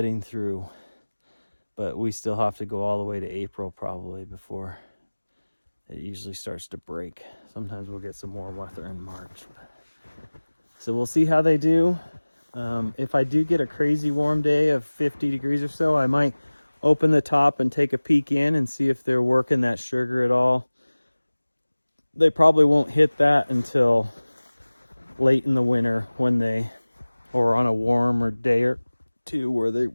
through. But we still have to go all the way to April probably before it usually starts to break. Sometimes we'll get some more weather in March. So we'll see how they do. If I do get a crazy warm day of 50 degrees or so, I might open the top and take a peek in and see if they're working that sugar at all. They probably won't hit that until late in the winter or on a warmer day or two where they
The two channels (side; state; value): both; inverted; correlation -1.00